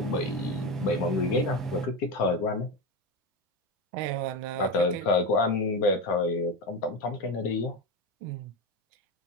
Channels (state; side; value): normal; both; correlation 0.18